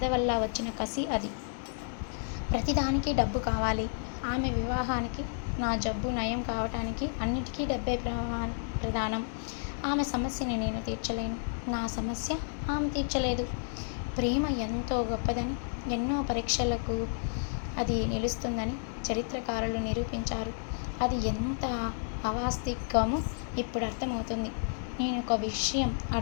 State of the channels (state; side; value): silent; right; digital silence